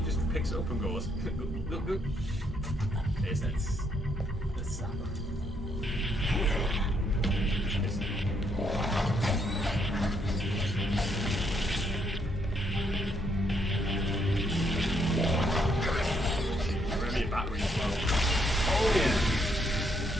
just picks it up and goes, good. Taste it. Let's zap him. Remember your battery as well. Oh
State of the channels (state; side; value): normal; both; correlation 0.73